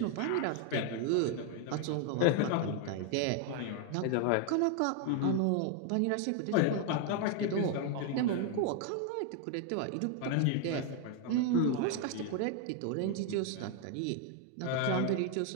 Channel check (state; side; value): different; both; correlation 0.00